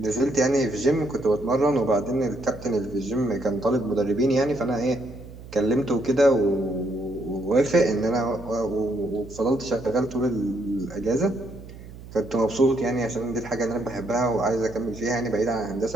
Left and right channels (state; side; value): noise; right; hum, 16 dB below the sound